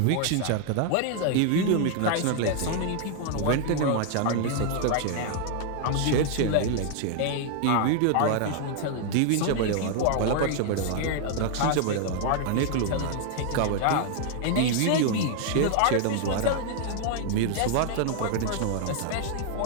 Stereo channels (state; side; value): different; both; correlation 0.00